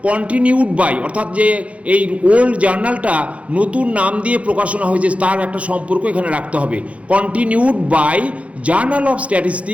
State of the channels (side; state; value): left; late; 0.064 ms